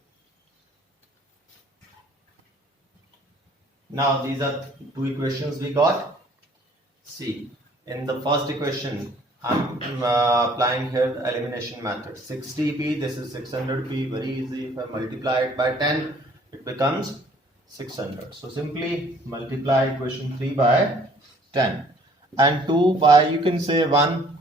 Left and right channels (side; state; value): both; normal; correlation 0.57